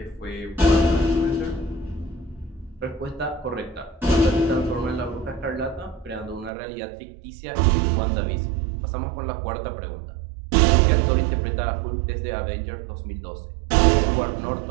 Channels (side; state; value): left; drops out; at 6.5 s